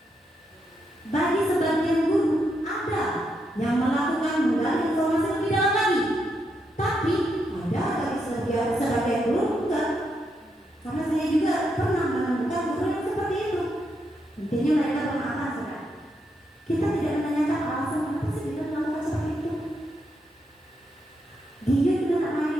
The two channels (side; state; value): both; normal; correlation 0.81